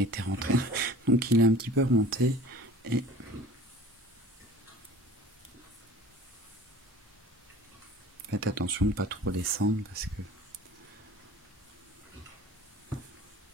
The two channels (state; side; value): normal; both; correlation 0.44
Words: rentré. Donc il est un petit peu remonté et faites attention de ne pas trop descendre parce que